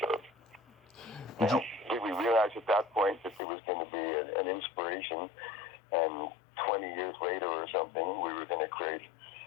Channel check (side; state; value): right; drops out; at 3.4 s